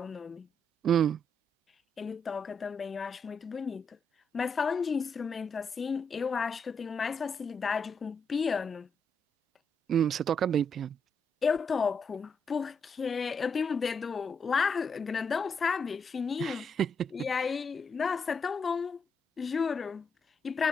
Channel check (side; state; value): both; normal; correlation 0.79